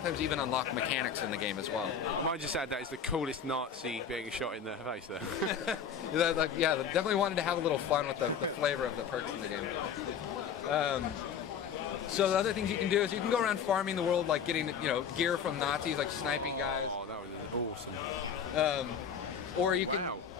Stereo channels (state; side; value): quieter; right; 7.2 dB